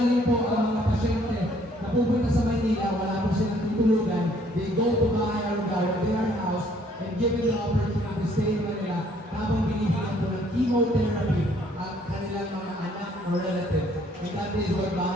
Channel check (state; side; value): normal; both; correlation 0.62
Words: po ang mga pasyente na pupunta sa Maynila, wala po silang tutulugan, they go to Bahay Aruga where they are housed and given the opportunity to stay in Manila habang binibigyan po ng chemotherapy ang kanilang mga anak or relatives. And that is what